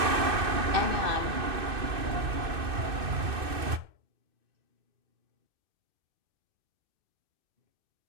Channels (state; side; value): late; left; 2.6 ms